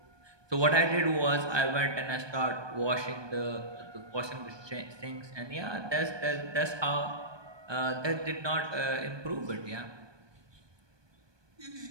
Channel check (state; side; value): late; left; 1.2 ms